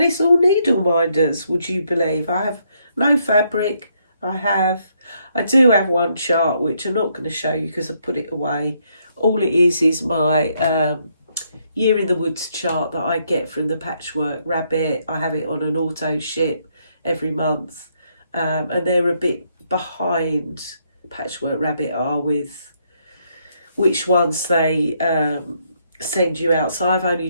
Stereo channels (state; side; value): inverted; both; correlation -0.74